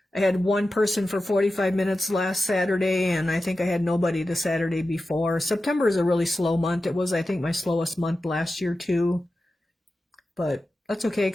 had one person for 45 minutes last Saturday, and I think I had nobody the Saturday before. September is a really slow month. It was, I think, my slowest month last year too. But that's okay,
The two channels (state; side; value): normal; both; correlation 0.93